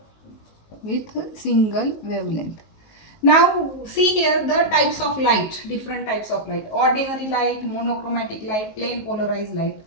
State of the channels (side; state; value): right; late; 19 ms